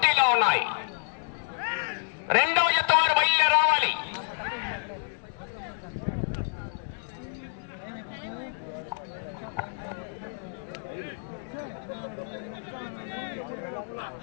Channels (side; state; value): right; silent; 59 dB below the other